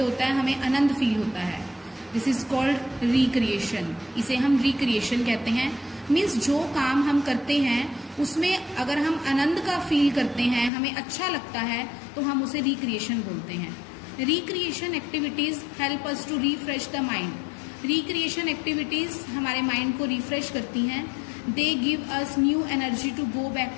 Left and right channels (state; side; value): drops out; right; at 10.7 s